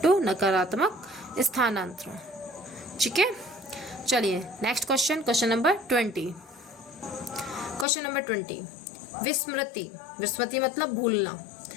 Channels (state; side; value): drops out; right; at 7.9 s